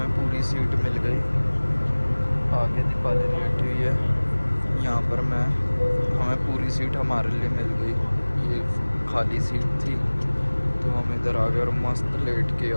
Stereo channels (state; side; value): inverted; both; correlation -1.00